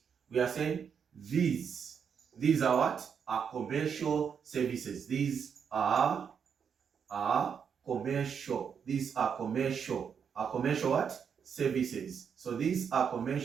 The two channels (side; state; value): left; quieter; 7.1 dB